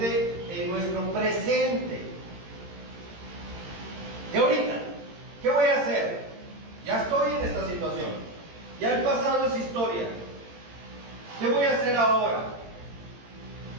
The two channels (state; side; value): late; left; 18 ms